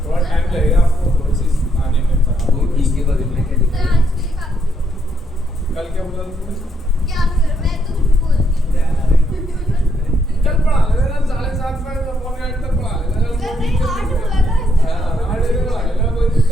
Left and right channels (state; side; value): normal; both; correlation 0.75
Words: थोड़ा टाइम लगेगा आपको प्रोसेस आने में। वो ठीक है, बदल में क्या लिखा है? कल क्या बोला तुमने? क्या कर? मैं तो कुछ बोलती कल पढ़ा लेना, 7:30 में पौने 8 तक पढ़ा लेना। नहीं, 8 बोला था। हां 8 बजे पढ़ा लेना, कोई